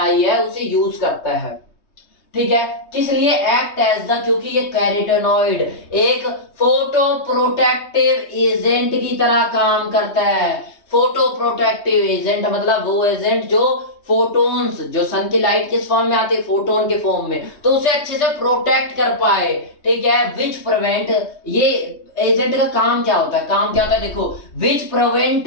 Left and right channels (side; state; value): right; late; 3.2 ms